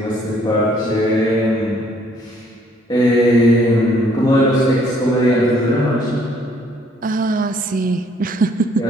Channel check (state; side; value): normal; both; correlation 0.64